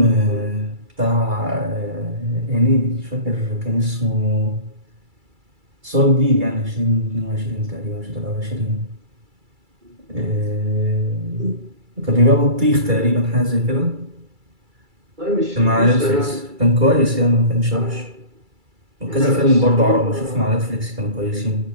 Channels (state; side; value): late; left; 2.3 ms